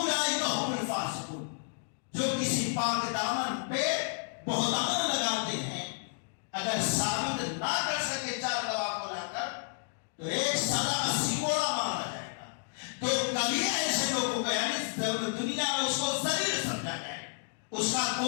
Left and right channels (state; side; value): silent; right; digital silence